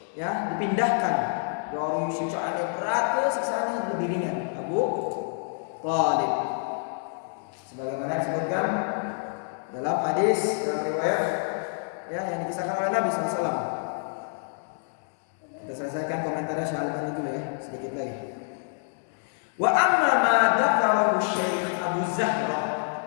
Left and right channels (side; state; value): right; silent; digital silence